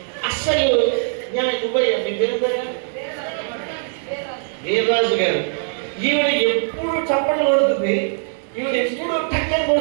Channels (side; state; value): left; silent; 65 dB below the other